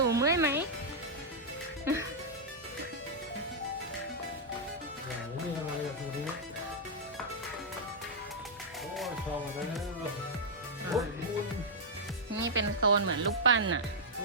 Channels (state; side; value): normal; both; correlation -0.06